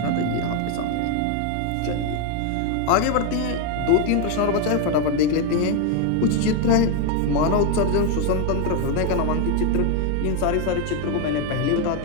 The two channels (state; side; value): different; both; correlation 0.01